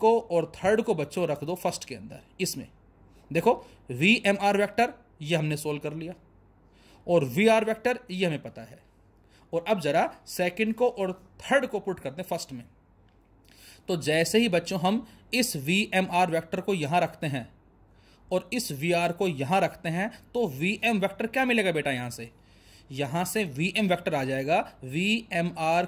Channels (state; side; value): identical; both; correlation 1.00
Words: और थर्ड को बच्चों रख दो फर्स्ट के अंदर। इसमें देखो VMR वेक्टर ये हमने सोल्व कर लिया, और VR वेक्टर ये हमें पता है। और अब जरा सेकंड को और थर्ड को पुट करते हैं फर्स्ट में। तो जैसे ही बच्चों हम इस VMR वेक्टर को यहां रखते हैं और इस VR को यहां रखते हैं, तो VM वेक्टर क्या मिलेगा बेटा, यहां से VM वेक्टर आ जाएगा VMR